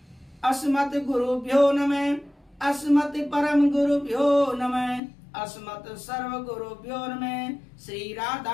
अस्मत् गुरुभ्यो नमः, अस्मत् परम गुरुभ्यो नमः, अस्मत् सर्व गुरुभ्यो नमः, श्री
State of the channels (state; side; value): drops out; right; at 5.0 s